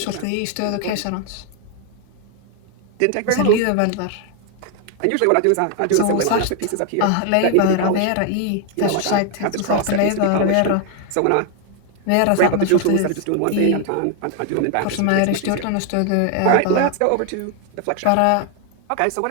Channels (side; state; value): both; different; correlation 0.00